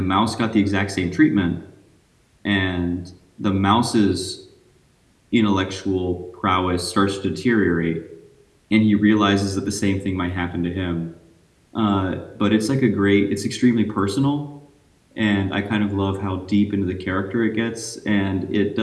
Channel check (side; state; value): both; identical; correlation 1.00